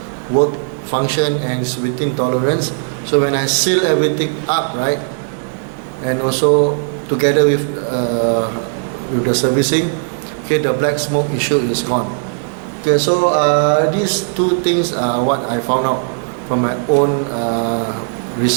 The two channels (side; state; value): left; silent; digital silence